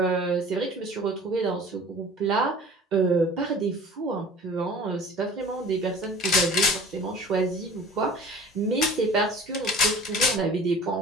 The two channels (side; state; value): both; normal; correlation 0.44